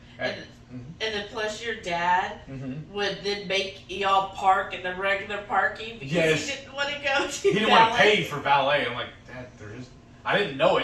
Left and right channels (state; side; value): identical; both; correlation 1.00